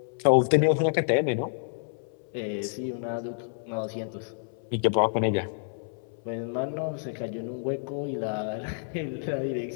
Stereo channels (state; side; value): silent; right; 59 dB below the other